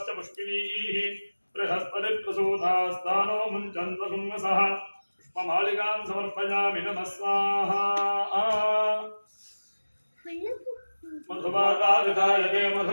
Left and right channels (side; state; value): both; inverted; correlation -1.00